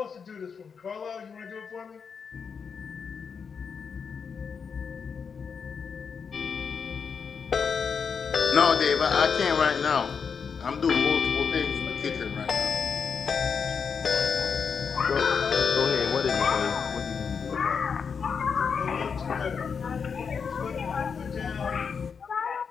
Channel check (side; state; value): right; quieter; 6.2 dB